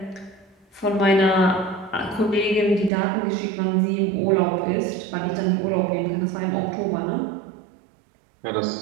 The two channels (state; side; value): drops out; left; at 2.9 s